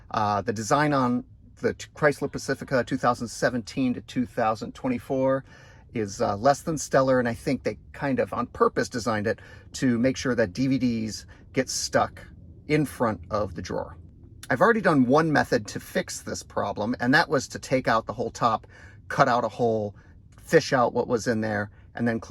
The design on the Chrysler Pacifica 2017 to 2024 is less than stellar, and I think they kind of on purpose designed it to make sure that DVDs get stuck in front of the drawer. I've already done one method to fix this problem, and that was to take out the whole top, cut out a hole, fish out what was in there, and then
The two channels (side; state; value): both; identical; correlation 1.00